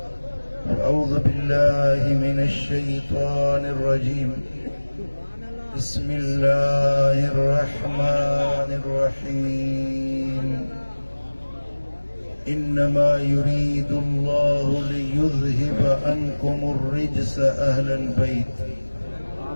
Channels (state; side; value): inverted; both; correlation -1.00